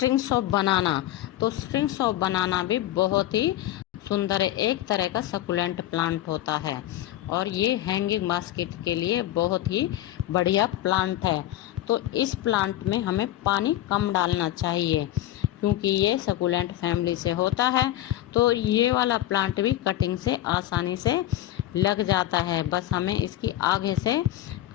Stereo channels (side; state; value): right; quieter; 14.2 dB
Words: ऑफ बनाना। तो स्ट्रिंग्स ऑफ बनाना भी बहुत ही सुंदर एक तरह का सकुलेंट प्लांट होता है और ये हैंगिंग बास्केट के लिए बहुत ही बढ़िया प्लांट है। तो इस प्लांट में हमें पानी कम डालना चाहिए क्योंकि ये सकुलेंट फैमिली से होता है। तो ये वाला प्लांट भी कटिंग से आसानी से लग जाता है, बस हमें इसकी आगे से